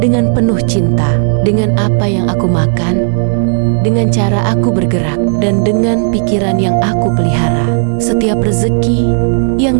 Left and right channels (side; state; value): left; silent; 73 dB below the other